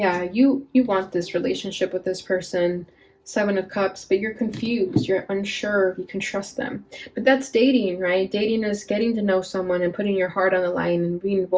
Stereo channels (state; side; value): identical; both; correlation 1.00